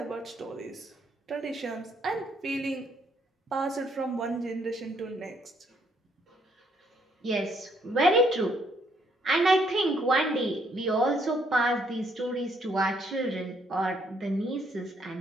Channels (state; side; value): normal; both; correlation 0.70